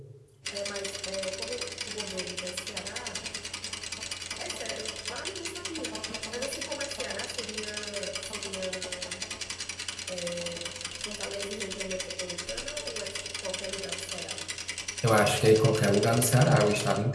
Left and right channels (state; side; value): identical; both; correlation 1.00